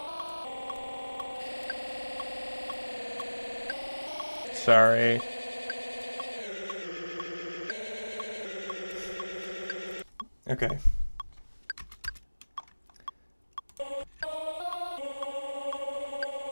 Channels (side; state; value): both; inverted; correlation -1.00